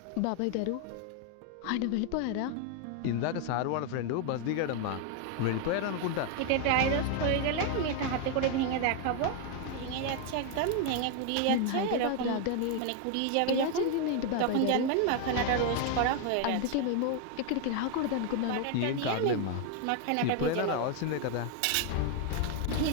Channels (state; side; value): different; both; correlation 0.01